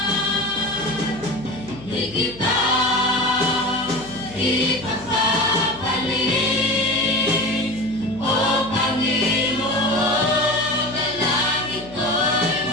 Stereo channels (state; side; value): noise; left; hum, 18 dB below the sound